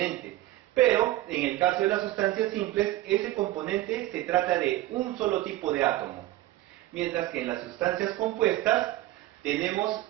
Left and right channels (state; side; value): quieter; left; 15.9 dB